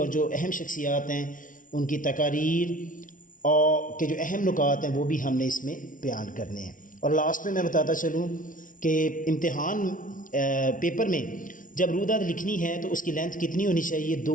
जो अहम शख्सियात हैं उनकी तकारीर और के जो अहम नुकात हैं वो भी हमने इसमें बयान करने हैं। और लास्ट में मैं बताता चलूँ कि इम्तिहान पेपर में जब रुदाद लिखनी है तो उसकी लेंथ कितनी होनी चाहिए,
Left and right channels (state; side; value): late; right; 0.38 ms